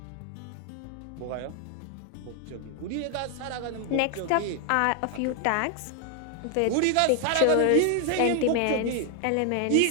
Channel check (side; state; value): both; different; correlation 0.00